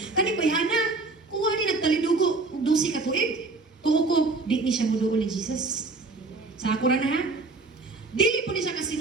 kani bayana kuha ni nagtalidugo og 12 ka tuig. Tuo ko di ni siya moduol ni Jesus. Sa ako ra na ha. Dili po ni siya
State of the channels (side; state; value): left; quieter; 3.6 dB